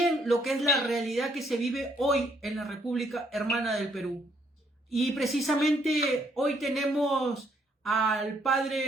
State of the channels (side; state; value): both; normal; correlation 0.70